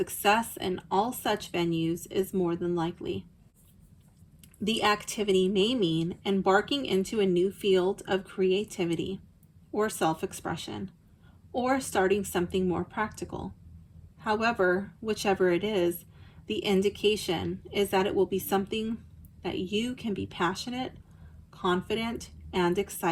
in all such venues is more than likely. The activity may mean embarking into a new field of creativity or self-expression, or starting something more practical. However, whichever it is, the indication is that it will be something that you can be passionate, confident, and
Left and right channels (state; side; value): identical; both; correlation 1.00